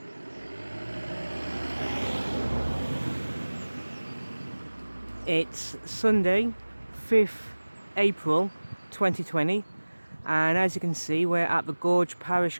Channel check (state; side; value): inverted; both; correlation -1.00